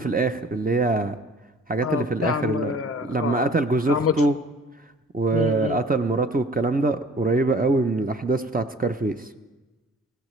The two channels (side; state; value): both; normal; correlation 0.50